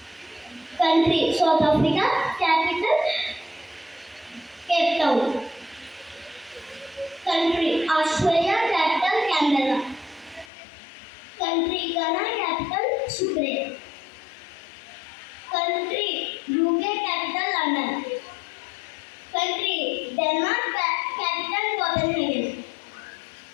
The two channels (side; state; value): right; drops out; at 10.5 s